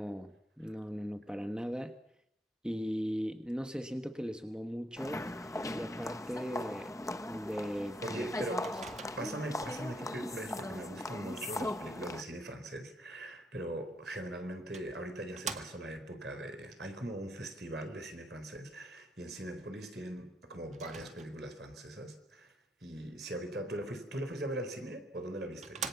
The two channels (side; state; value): both; normal; correlation 0.73